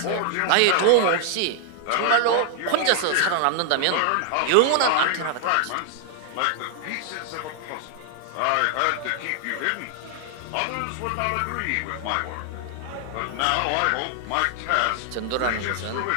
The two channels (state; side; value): different; both; correlation 0.00